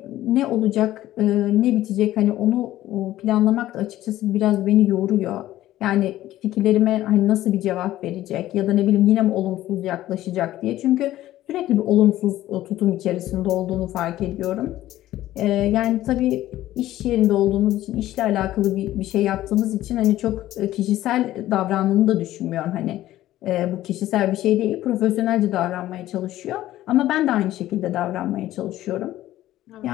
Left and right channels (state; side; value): quieter; right; 14.4 dB